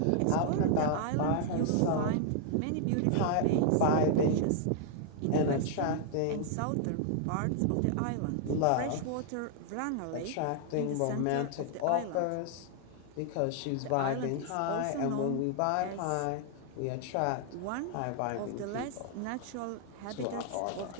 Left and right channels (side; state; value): both; different; correlation 0.00